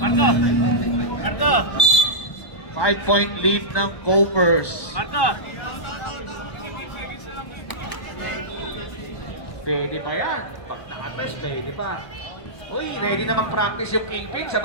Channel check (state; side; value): late; right; 1.2 ms